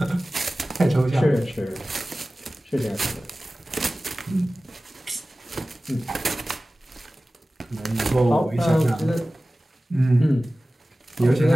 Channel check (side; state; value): both; normal; correlation 0.97